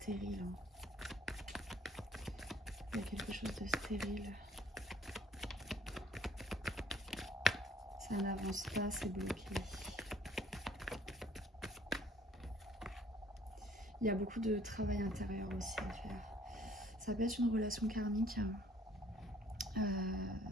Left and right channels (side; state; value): both; normal; correlation 0.59